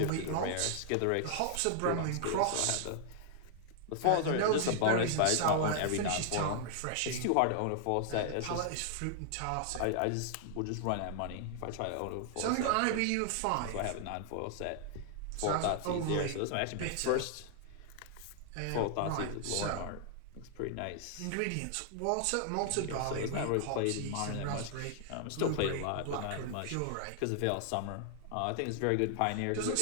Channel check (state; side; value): different; both; correlation -0.01